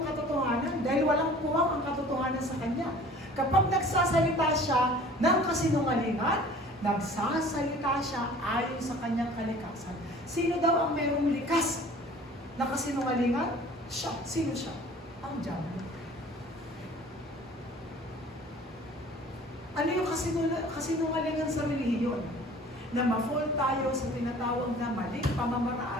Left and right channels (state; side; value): normal; both; correlation 0.48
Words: katotohanan dahil walang puwang ang katotohanan sa Kanya. Kapag nagsasalita siya ng kasinungalingan, nagsasalita siya ayon sa kanyang kalikasan. Sino daw ang mayroong likas na kasinungalingan? Siya. Sino siya? Ang dyablo. Ano yung kasinungalingan sa relihiyon? Na ma-fall tayo sa tinatawag na maling